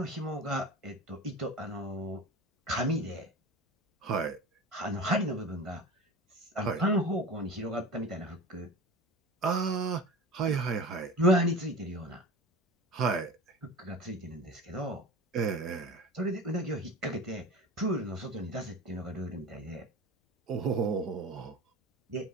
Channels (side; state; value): both; normal; correlation 0.34